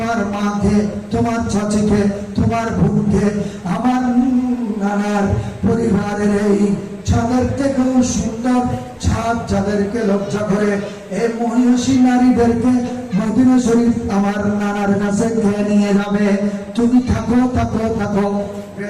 মাকে, তোমার চাচিকে, তোমার বোনকে, আমার নানার পরিবারের এই ছাদের থেকেও সুন্দর ছাদ যাদেরকে লজ্জা করে, এই মহিষী নারীদেরকে মদিনা শরীফ আমার নানার কাছে খেয়ে নিয়ে যাবে। তুমি থাকো থাকো থাকো।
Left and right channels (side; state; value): both; identical; correlation 1.00